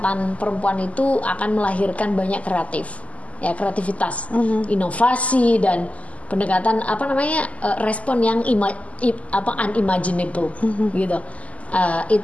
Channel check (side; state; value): right; late; 0.069 ms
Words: perempuan itu akan melahirkan banyak kreativitas, inovasi dan pendekatan respon yang unimaginable gitu.